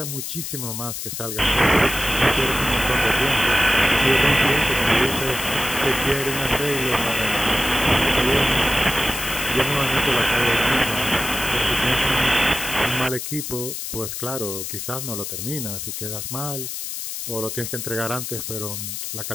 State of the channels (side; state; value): left; noise; hiss, 6 dB below the sound